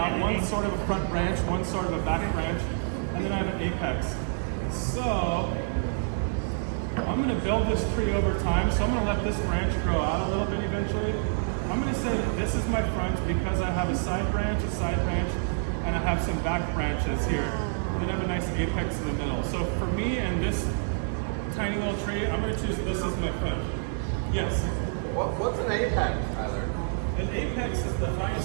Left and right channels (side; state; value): left; silent; digital silence